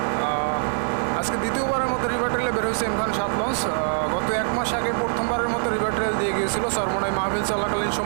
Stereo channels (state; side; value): silent; left; 57 dB below the other